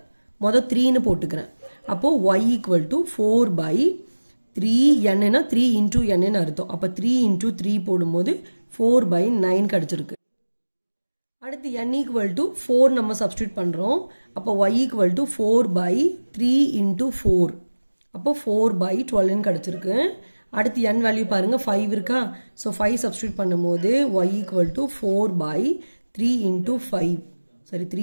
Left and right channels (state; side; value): inverted; both; correlation -1.00